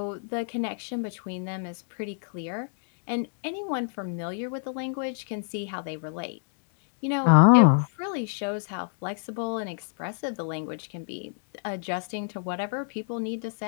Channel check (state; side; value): silent; right; digital silence